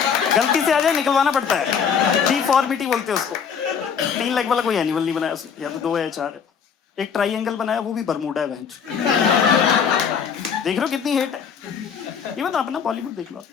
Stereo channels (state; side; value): quieter; right; 6.9 dB